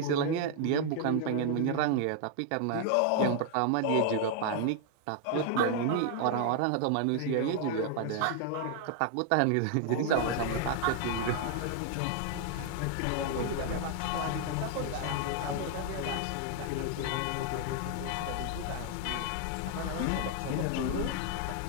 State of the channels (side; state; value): both; different; correlation 0.00